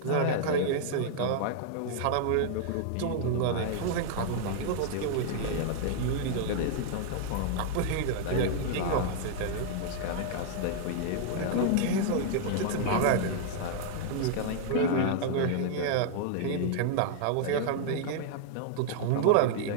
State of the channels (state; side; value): different; both; correlation -0.01